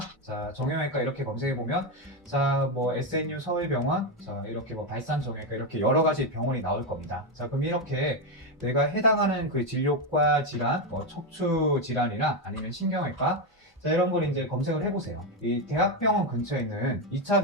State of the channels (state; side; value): normal; both; correlation 0.08